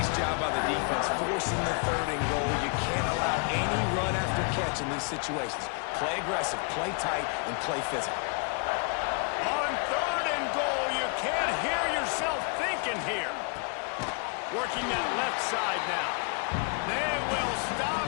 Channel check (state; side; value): quieter; right; 37.7 dB